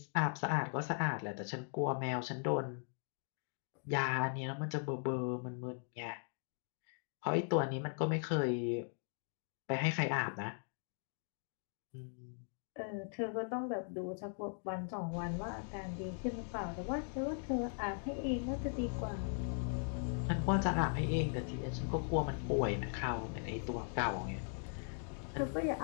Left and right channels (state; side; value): silent; right; 52 dB below the other